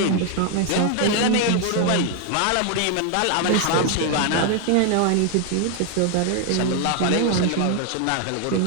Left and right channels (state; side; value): different; both; correlation 0.01